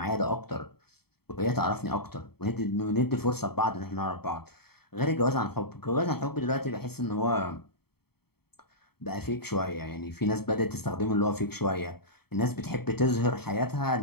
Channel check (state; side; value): late; right; 0.96 ms